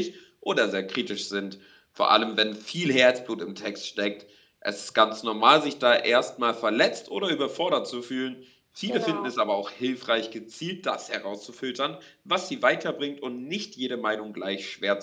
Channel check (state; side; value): identical; both; correlation 1.00